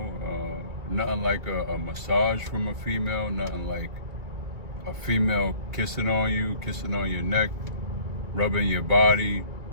Nothing like a massage from a female, nothing like a female kissing on your neck, rubbing your body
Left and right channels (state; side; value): late; left; 2.2 ms